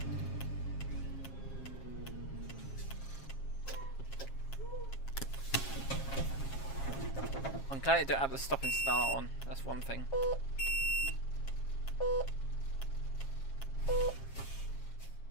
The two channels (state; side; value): late; right; 7.4 ms